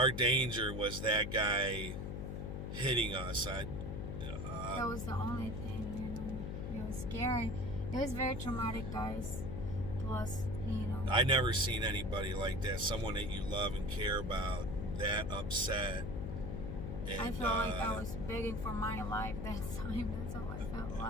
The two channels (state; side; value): noise; left; hum, 4 dB below the sound